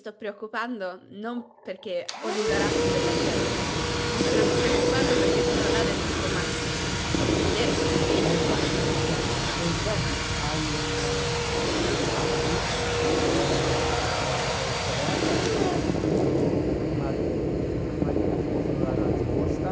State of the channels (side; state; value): both; identical; correlation 1.00